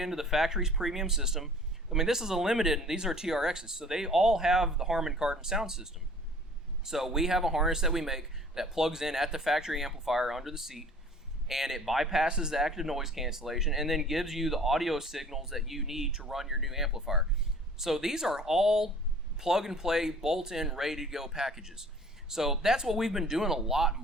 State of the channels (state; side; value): normal; both; correlation 0.50